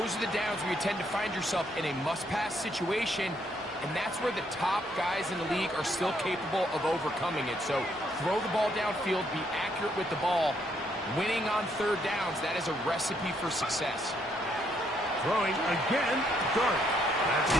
are the downs where you tend to find yourself in a must-pass situation, and that's where the top guys in the league are still capable of overcoming it. So throw the ball downfield, be accurate with the ball. Winning on 3rd downs, that is a recipe for success. Throwing again, Dart. That's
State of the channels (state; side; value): normal; both; correlation 0.72